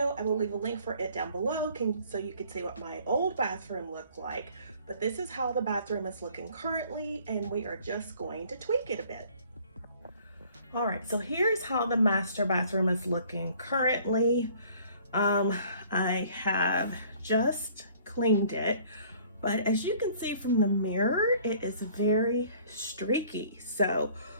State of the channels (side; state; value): both; inverted; correlation -0.55